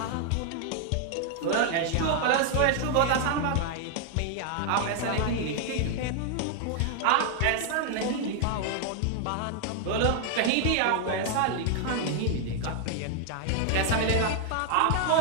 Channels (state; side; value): different; both; correlation 0.00